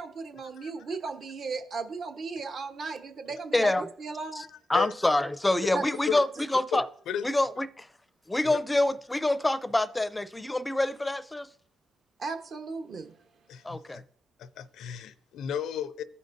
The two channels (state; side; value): normal; both; correlation 0.93